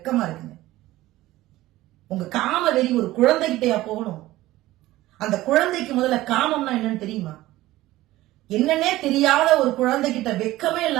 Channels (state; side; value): quieter; left; 16.7 dB